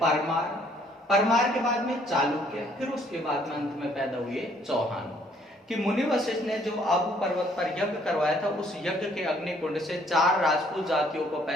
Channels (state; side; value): normal; both; correlation 0.63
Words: परमार के बाद में चालुक्य, फिर उसके बाद में अंत में पैदा हुए चौहान। कि मुनि वशिष्ठ ने जो आबू पर्वत पर यज्ञ करवाया था, उस यज्ञ के अग्निकुंड से 4 राजपूत जातियों को